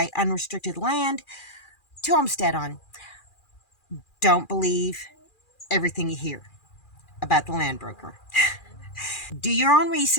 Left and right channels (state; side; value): late; right; 2.4 ms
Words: unrestricted land to homestead on. Don't believe everything you hear about the land broker. Do your own